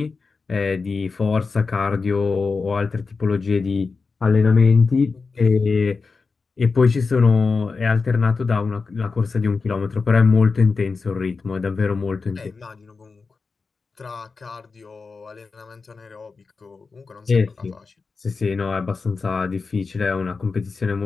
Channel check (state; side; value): quieter; right; 4.5 dB